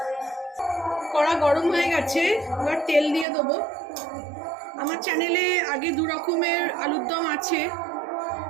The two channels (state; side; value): drops out; left; at 3.2 s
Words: কড়া গরম হয়ে গেছে, এবার তেল দিয়ে দেবো। আমার চ্যানেলে আগে দু রকমের আলুর দম আছে।